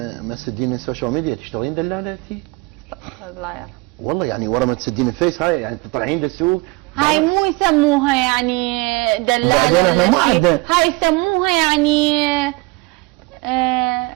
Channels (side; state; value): left; quieter; 24.2 dB